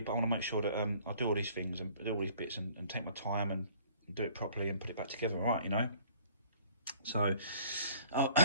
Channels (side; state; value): both; inverted; correlation -0.55